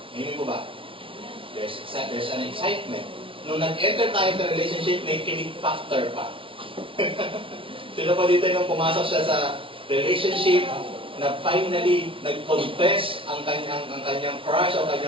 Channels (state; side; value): late; left; 0.25 ms